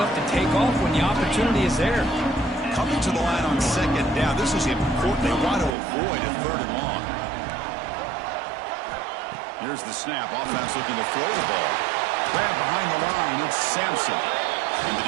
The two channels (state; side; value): drops out; left; at 5.8 s